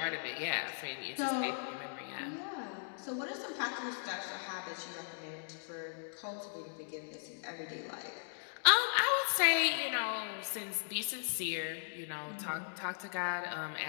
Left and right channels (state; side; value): silent; right; digital silence